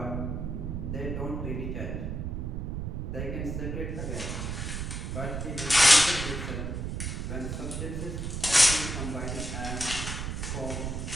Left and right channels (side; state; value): right; noise; rumble, 3 dB below the sound